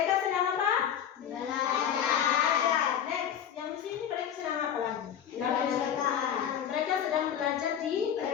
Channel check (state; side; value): quieter; right; 9.1 dB